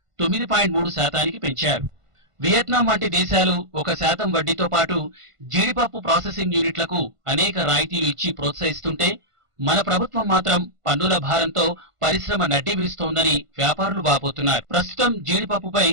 9.3%కి పెంచారు. వియత్నాం వంటి దేశాలు 1% వడ్డీతో పాటు జీడిపప్పు ప్రాసెసింగ్ యూనిట్లకు అనేక రాయితీలు ఇచ్చి ప్రోత్సహిస్తుంటే మన ప్రభుత్వం మాత్రం పన్నుల భారంతో పరిశ్రమ నడ్డి విరుస్తోందని వ్యాపారులు వాపోతున్నారు. ప్రస్తుతం జీడిపప్పుపై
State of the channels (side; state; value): left; late; 1.5 ms